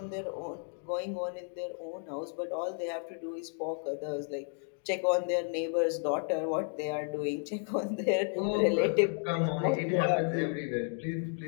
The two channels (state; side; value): silent; right; 56 dB below the other